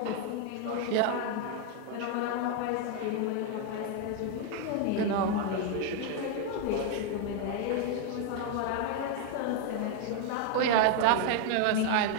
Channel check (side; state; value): both; different; correlation 0.01